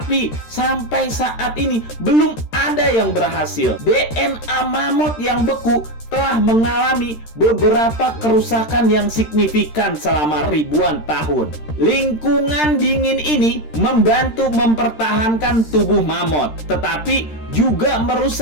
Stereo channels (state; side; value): late; right; 13 ms